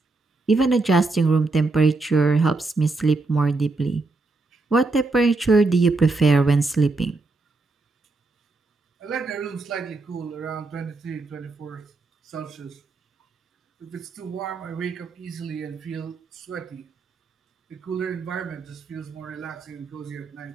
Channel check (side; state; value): left; quieter; 3.5 dB